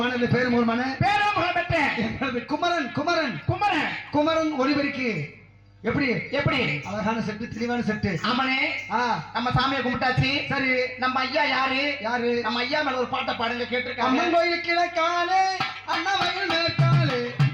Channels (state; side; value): identical; both; correlation 1.00